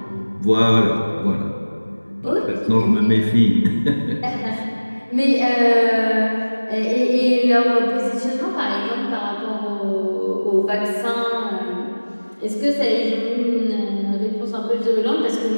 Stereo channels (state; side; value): inverted; both; correlation -1.00